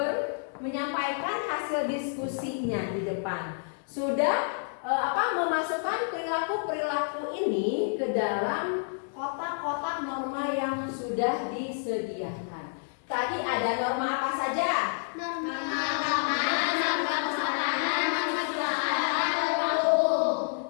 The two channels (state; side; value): silent; right; digital silence